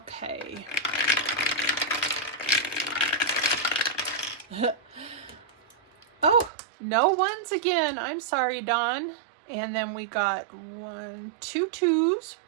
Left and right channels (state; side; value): drops out; left; at 6.5 s